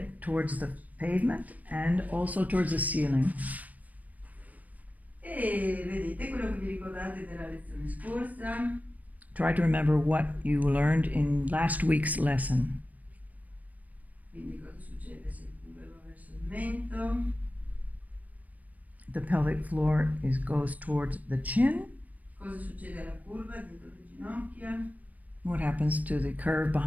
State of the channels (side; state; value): left; late; 0.075 ms